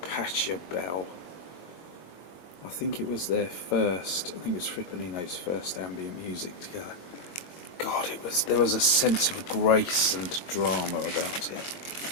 Pachelbel. I think it was their first. I think it was Fripp and Eno's first ambient music together. God, there was a sense of grace and drama about it.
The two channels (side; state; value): right; late; 22 ms